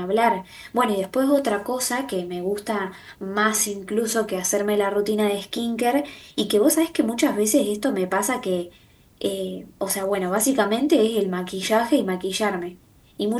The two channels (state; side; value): identical; both; correlation 1.00